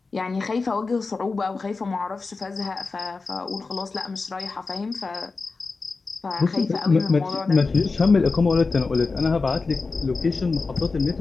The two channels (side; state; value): right; quieter; 4.1 dB